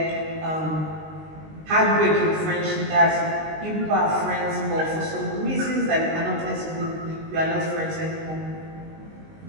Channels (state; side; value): late; left; 19 ms